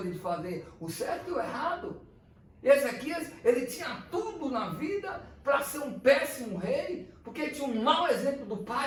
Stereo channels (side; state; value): both; identical; correlation 1.00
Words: de fazer o certo e o errado. Ezequias, ele tinha tudo na vida para ser um péssimo rei, porque tinha um mau exemplo do